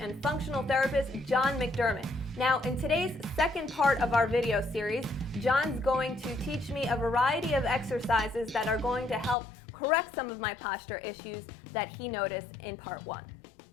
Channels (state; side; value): drops out; right; at 9.3 s